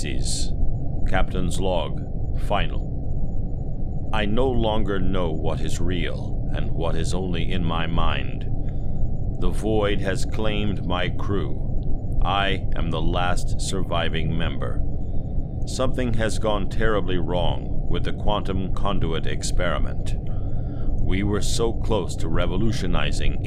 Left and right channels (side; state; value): both; identical; correlation 1.00